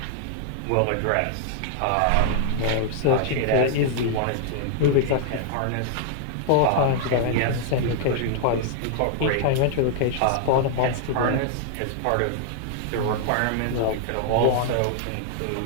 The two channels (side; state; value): both; different; correlation 0.00